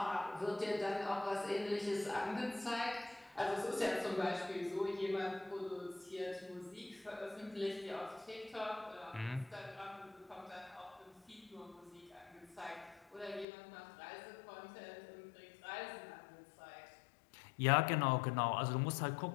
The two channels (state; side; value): drops out; right; at 13.5 s